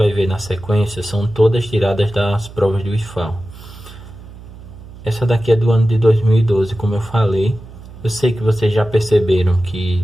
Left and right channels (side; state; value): right; noise; hum, 17 dB below the sound